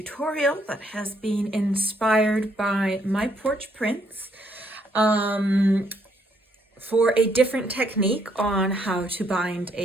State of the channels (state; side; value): normal; both; correlation 0.70